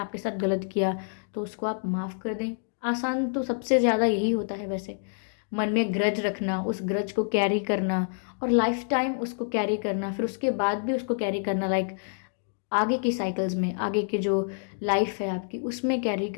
साथ गलत किया तो उसको आप माफ़ कर दें। आसान तो सबसे ज़्यादा यही होता है वैसे, मन में ग्रज रखना, उस ग्रज को कैरी करना और लाइफ टाइम उसको कैरी करना, फिर उसके बाद भी उसको कैरी करना, लाइक आगे की साइकिल्स में, आगे के जो लाइफ है आपकी उसमें कैरी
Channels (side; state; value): right; silent; digital silence